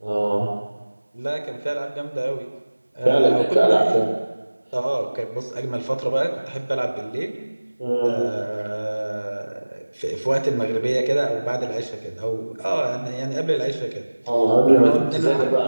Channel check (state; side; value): inverted; both; correlation -1.00